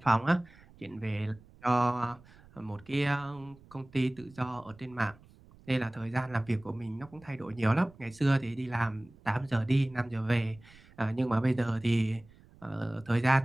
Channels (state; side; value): noise; right; rumble, 25 dB below the sound